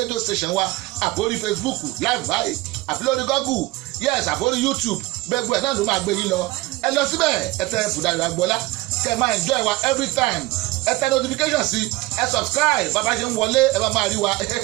rédíò station wa àbórí Facebook live báyìí àbí lórí Google yes àbórí YouTube gbẹgbẹ ẹ̀ náà ló máa gbé yín lọ. Ẹ lọ síbẹ̀ ẹ tẹ Dayọ̀ Agboola kẹ́ máa enjoy wa every time. Ẹ tẹ notification sí ẹ subscribe bàbá ṣe ń wọlé ẹ bá máa rí wa.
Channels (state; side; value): quieter; left; 20.4 dB